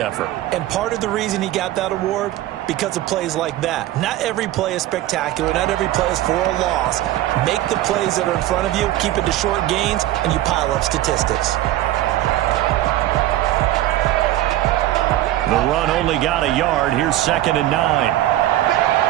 And part of the reason he got that award, because of plays like that. Not every play is spectacular. Not every play is for a loss. Make the plays that are in front of you, keep it to short gains, and you pile up statistics. The run only got a yard. Here's 2nd and 9.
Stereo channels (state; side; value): quieter; left; 14.4 dB